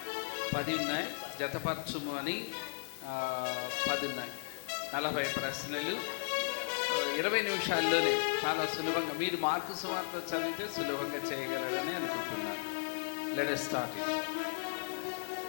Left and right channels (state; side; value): silent; right; digital silence